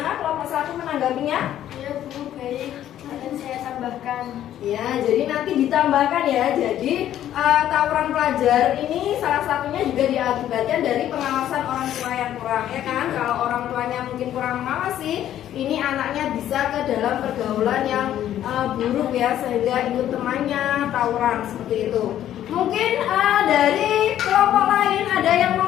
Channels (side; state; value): right; quieter; 11.6 dB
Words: kelompok 1 menanggapinya? Ya, Bu, baik. Akan saya tambahkan. Ya, jadi nanti ditambahkan ya. Jadi tawuran pelajar ini salah satunya juga diakibatkan dari pengawasan orang tua yang kurang, ya kan? Kalau orang tuanya mungkin kurang mengawasi, ini anaknya bisa ke dalam pergaulan yang buruk ya, sehingga ikut temannya tawuran seperti itu. Mungkin dari kelompok lain ada yang